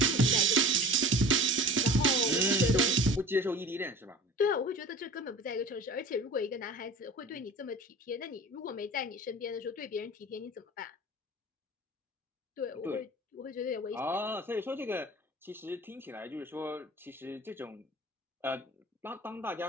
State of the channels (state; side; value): normal; both; correlation 0.40